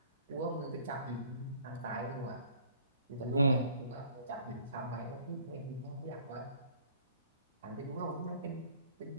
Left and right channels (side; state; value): both; inverted; correlation -0.54